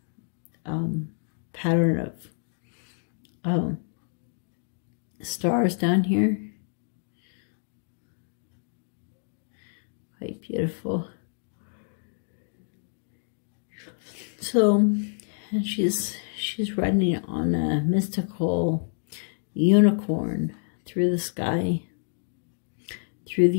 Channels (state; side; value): silent; right; 59 dB below the other